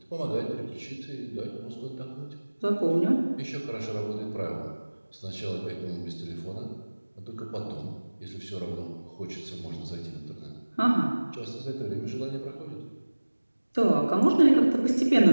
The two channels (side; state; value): both; inverted; correlation -1.00